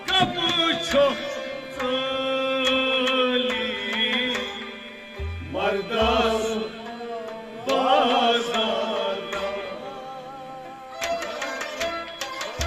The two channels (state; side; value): identical; both; correlation 1.00